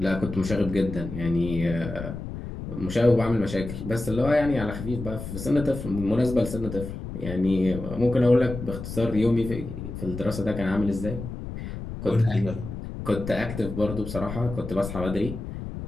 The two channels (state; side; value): noise; left; rumble, 8 dB below the sound